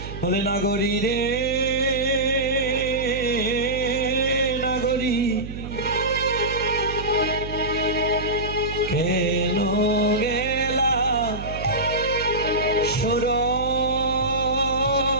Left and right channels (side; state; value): right; noise; hum, 9 dB below the sound